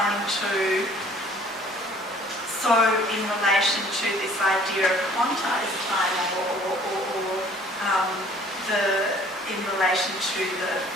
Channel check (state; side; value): normal; both; correlation 0.54